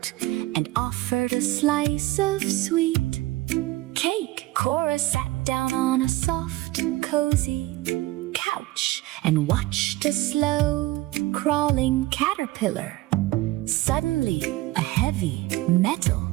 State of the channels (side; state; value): left; quieter; 18.2 dB